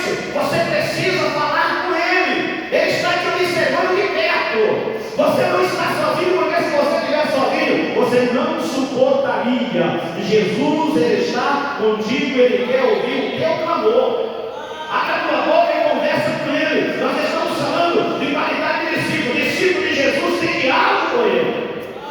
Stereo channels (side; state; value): both; identical; correlation 1.00